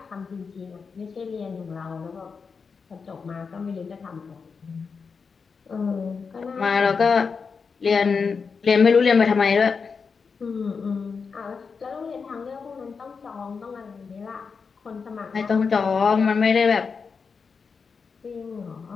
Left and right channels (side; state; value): right; quieter; 5.3 dB